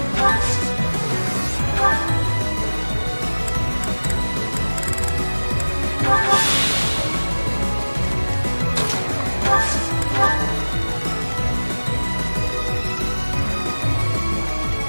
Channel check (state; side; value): inverted; both; correlation -1.00